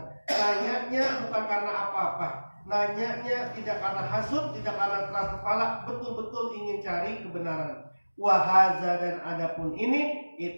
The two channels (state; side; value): inverted; both; correlation -1.00